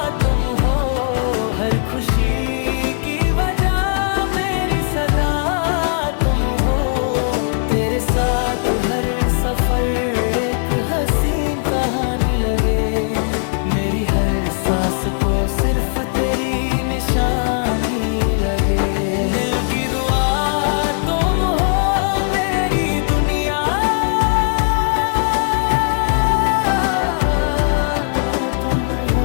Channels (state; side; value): silent; right; digital silence